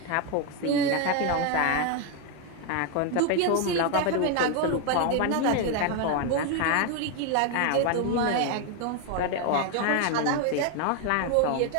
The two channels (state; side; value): different; both; correlation 0.01